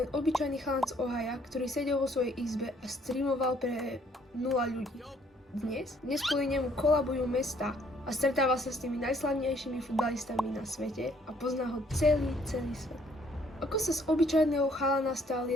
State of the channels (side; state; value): both; normal; correlation 0.64